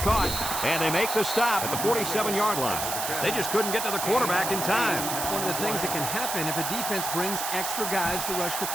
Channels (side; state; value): right; noise; hiss, 3 dB below the sound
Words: caught. And they make the stop at the 47-yard line. They just couldn't get to the quarterback in time. That's one of the things that can happen if a defense brings extra guys to rush the